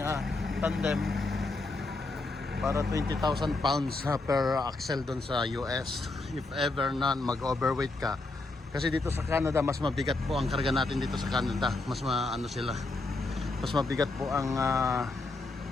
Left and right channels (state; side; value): quieter; right; 3.3 dB